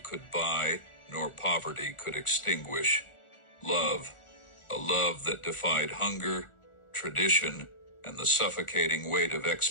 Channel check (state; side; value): late; right; 1.4 ms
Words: could buy nor poverty could extinguish: love. A love that defied hunger, tradition, and the suffocating weight of